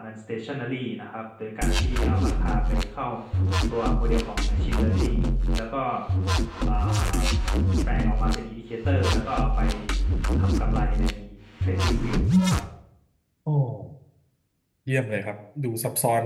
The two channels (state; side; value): identical; both; correlation 1.00